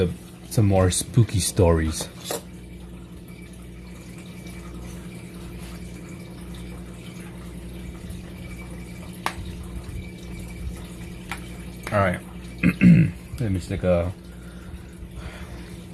some more spooky stories. All right. Let me just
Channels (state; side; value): identical; both; correlation 1.00